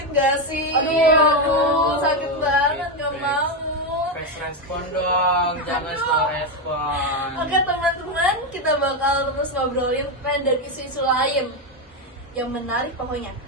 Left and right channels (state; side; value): normal; both; correlation 0.08